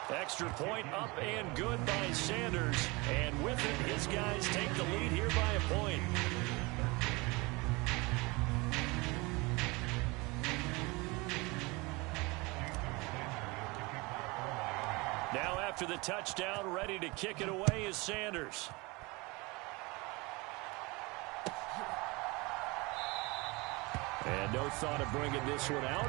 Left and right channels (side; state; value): left; quieter; 25.3 dB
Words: Extra point up and good by Sanders. And with it, his guys take the lead here by a point. Now after the touchdown, ready to kick it away is Sanders. And no thought of bringing this one out.